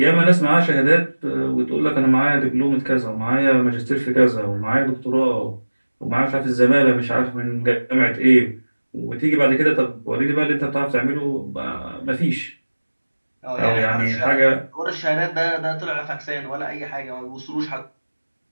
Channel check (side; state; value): both; inverted; correlation -1.00